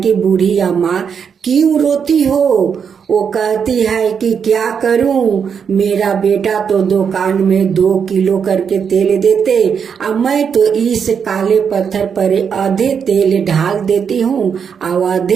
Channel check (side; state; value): left; quieter; 6.9 dB